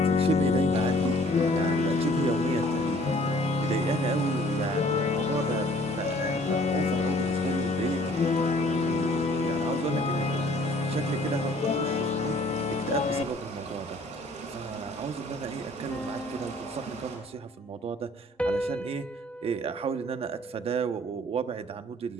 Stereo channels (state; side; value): normal; both; correlation 0.56